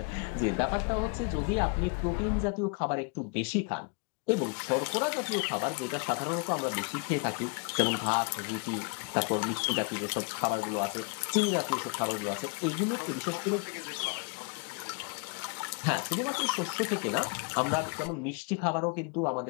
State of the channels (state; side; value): quieter; right; 35.2 dB